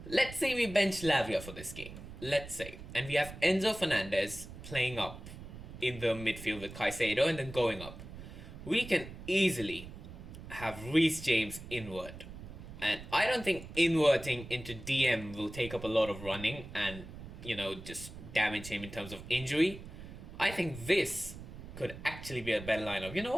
Let's say we bench Lavia for this game. let's say, and we have Enzo Fernandez playing up in the midfield with Caicedo and then going up, we can easily have Reece James invert. And I don't think inverting into DM will take up a lot of running and, just damage him in terms of injury. I think this could actually be a better lineup. You know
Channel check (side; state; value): right; noise; rumble, 13 dB below the sound